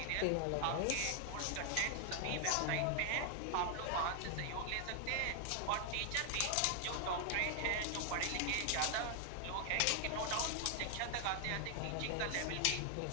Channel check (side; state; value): both; different; correlation 0.00